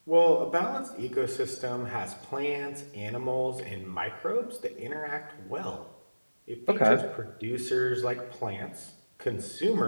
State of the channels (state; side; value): inverted; both; correlation -1.00